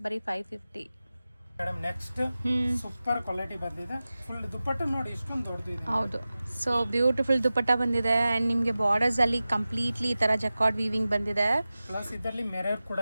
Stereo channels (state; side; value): inverted; both; correlation -0.96